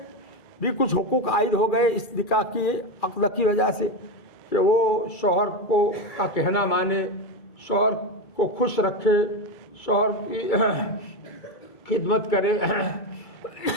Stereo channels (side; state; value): right; late; 2.3 ms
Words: بھی کچھ حقوق عائد ہو گئے اس نکاح کی عقد کی وجہ سے، کہ وہ شوہر کو کا کہنا مانے، شوہر کو خوش رکھے، شوہر کی خدمت کرے،